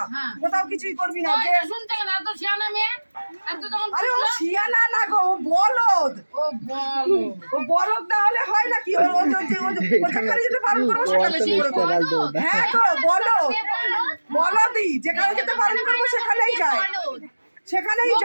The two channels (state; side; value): inverted; both; correlation -1.00